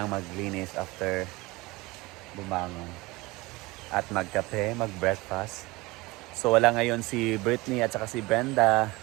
maglinis after bumangon. At magkape, mag-breakfast. So wala ngayon si Brittany at saka si Brenda.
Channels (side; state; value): left; quieter; 22.2 dB